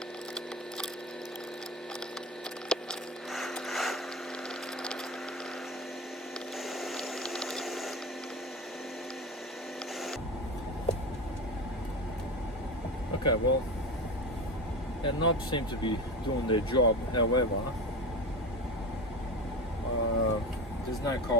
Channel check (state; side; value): normal; both; correlation 0.25